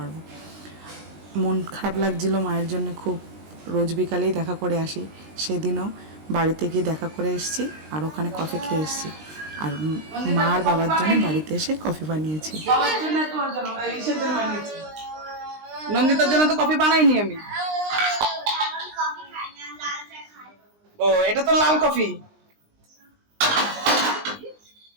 মন খারাপ লাগছিল মায়ের জন্য খুব, রোজ বিকালেই দেখা করে আসি, সেদিনও বাড়িতে গিয়ে দেখা করে এসেছি আর ওখানে কফি খেয়ে এসেছি। আর মা আর বাবার জন্য বাড়িতে এসে কফি বানিয়েছি। নন্দিতার জন্য তো কফি বানাইনি আমি। ও, এটা তো লাল কফি।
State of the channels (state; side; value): late; left; 19 ms